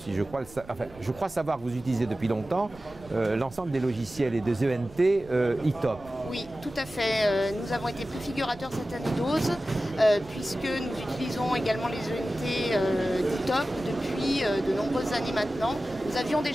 je crois savoir que vous utilisez depuis longtemps l'ensemble des logiciels et des ENT ITOP. Oui, tout à fait. Nous avons été préfigurateurs cette année d'OSE, puisque nous utilisons également les ENT d'ITOP depuis de nombreuses années maintenant. Nous avions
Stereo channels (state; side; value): noise; right; rumble, 21 dB below the sound